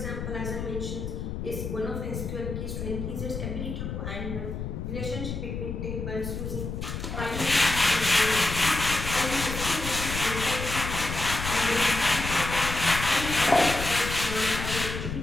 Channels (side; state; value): left; noise; rumble, 5 dB below the sound